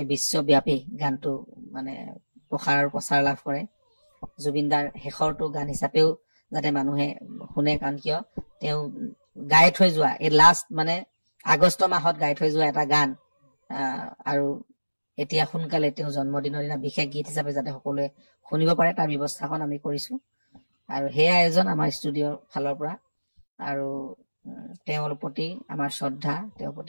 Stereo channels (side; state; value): both; inverted; correlation -1.00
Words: বিশ্বব্যাপী গানটো মানে প্ৰচাৰ লাভ কৰে। জুবিনদাৰ শেষৰটো গান হিচাপেও যাতে মানুহে শুনে, কাৰণ কিয় তেওঁ গাই থৈ যোৱা এই লাষ্ট মানে আগষ্ট মাহত গাই থৈ যোৱা এটা গান, আৰু এতিয়া সোনকালে তেওঁ জন্মদিনৰ দিনা বিশেষ গীত হিচাপে যাতে সকলোৱে শুনিব পাৰে, তাৰ ব্যৱস্থাখন আমি কৰিছো। আৰু সেই আয়োজন আমাৰ ষ্টুডিঅ'ৰ ফালৰ পৰা। আৰু তেওঁৰ প্ৰতি আমাৰ শ্ৰদ্ধা, তেওঁৰ